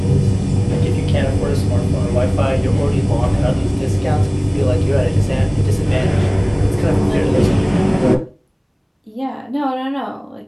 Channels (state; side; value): identical; both; correlation 1.00